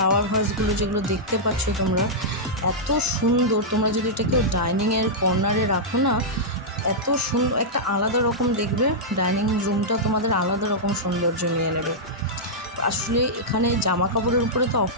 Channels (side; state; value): both; normal; correlation -0.10